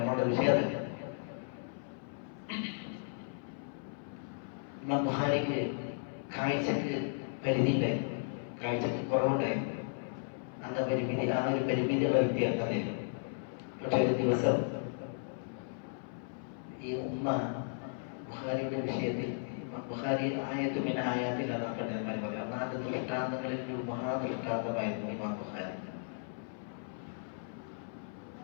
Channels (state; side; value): silent; right; 54 dB below the other